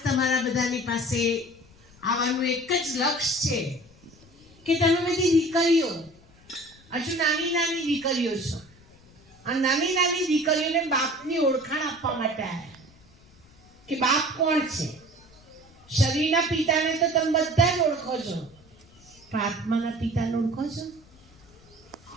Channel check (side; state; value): left; noise; rumble, 27 dB below the sound